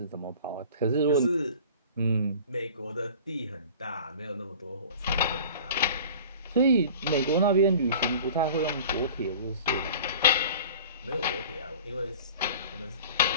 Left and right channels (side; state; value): both; inverted; correlation -0.42